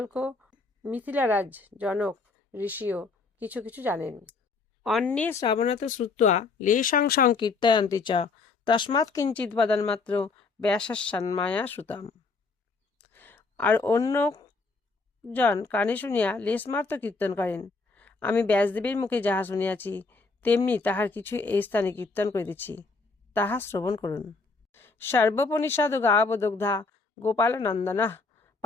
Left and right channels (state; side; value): quieter; right; 4.1 dB